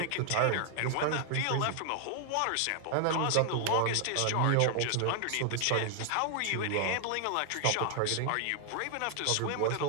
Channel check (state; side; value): different; both; correlation 0.00